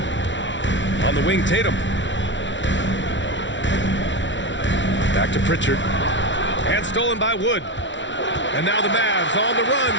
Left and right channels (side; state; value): right; late; 0.54 ms